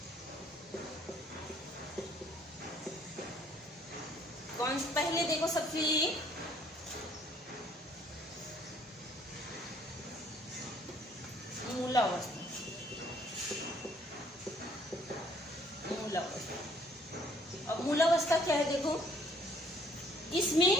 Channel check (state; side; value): normal; both; correlation 0.61